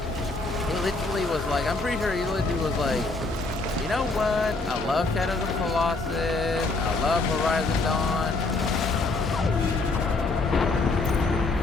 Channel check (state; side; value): quieter; right; 3.4 dB